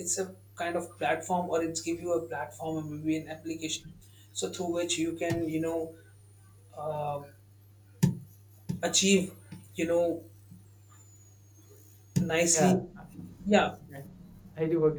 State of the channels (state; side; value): identical; both; correlation 1.00